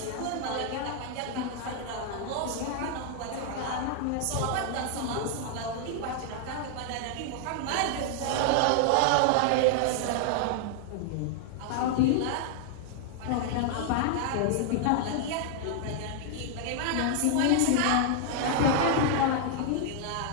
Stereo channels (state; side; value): different; both; correlation 0.00